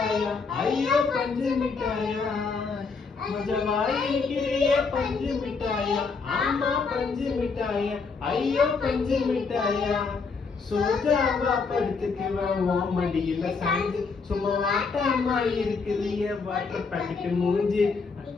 ஐயோ பஞ்சு மிட்டாயா. மஜவாயிருக்கிறியே பஞ்சு மிட்டாயா, ஆமா பஞ்சு மிட்டாயா, ஐயோ பஞ்சு மிட்டாயா. சோஜாவா படுத்துக்குவேன் உன் மடியில சாஞ்சு, சும்மா வாட்டாமா இருக்கிறிய வாட்டர் பாக்கெட் மூஞ்சி.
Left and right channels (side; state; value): right; quieter; 4.8 dB